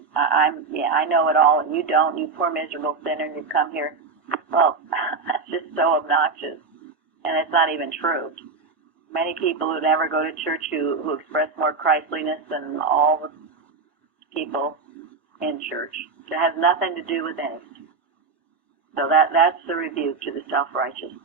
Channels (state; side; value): quieter; left; 4.4 dB